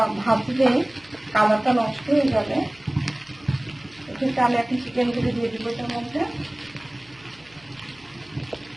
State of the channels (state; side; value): noise; right; hum, 28 dB below the sound